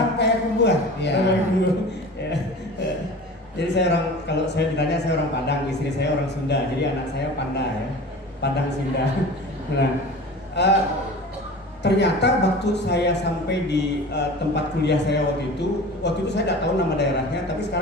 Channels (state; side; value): normal; both; correlation 0.37